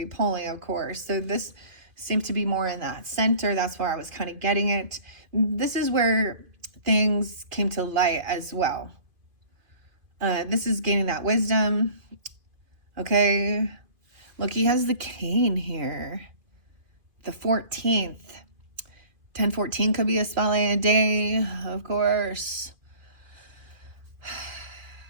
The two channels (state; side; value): late; left; 2.5 ms